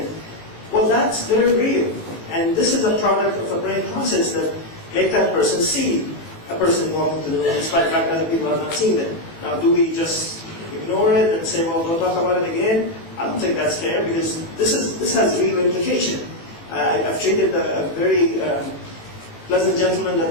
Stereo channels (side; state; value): right; late; 18 ms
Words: Well, that's very real. And this is a product of a brain process that make that person see a person walking to the room, despite the fact that other people are not seeing them. Now, do we just ignore it and say, well, don't talk about it again? I don't think that's fair, because this has real implication. I've treated a very pleasant gentleman